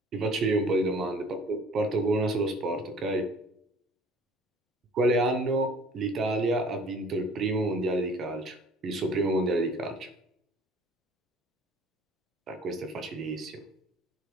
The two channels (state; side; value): normal; both; correlation 0.51